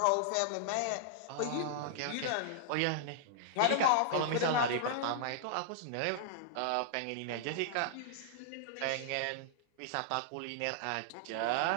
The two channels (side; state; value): both; different; correlation -0.01